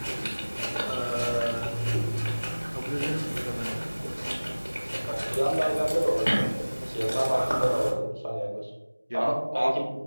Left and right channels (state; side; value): inverted; both; correlation -1.00